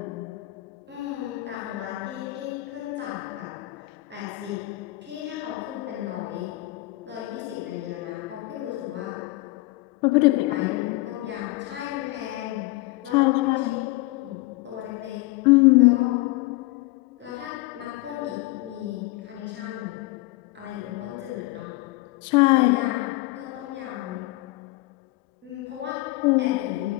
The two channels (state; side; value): quieter; right; 19.6 dB